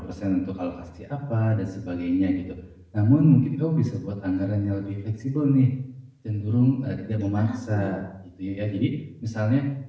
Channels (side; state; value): both; identical; correlation 1.00